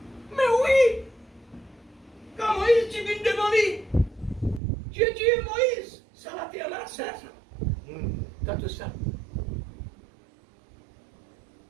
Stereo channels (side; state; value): left; drops out; at 4.6 s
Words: Mais oui! Quand Moïs dit devant lui, Dieu dit Moïse, ça la terre là, ça. T'as tout ça.